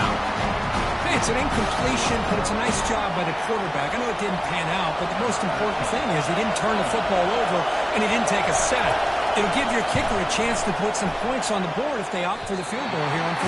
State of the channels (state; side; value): identical; both; correlation 1.00